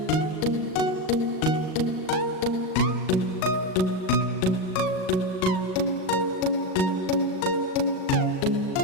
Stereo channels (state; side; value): late; right; 38 ms